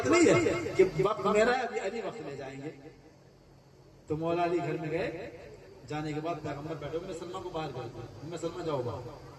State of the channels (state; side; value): identical; both; correlation 1.00